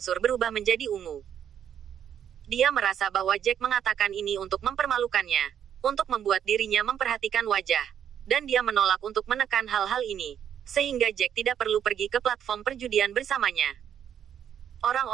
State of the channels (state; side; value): quieter; left; 9.2 dB